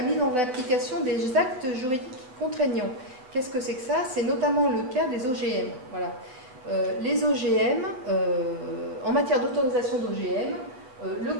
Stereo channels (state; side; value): late; left; 7.9 ms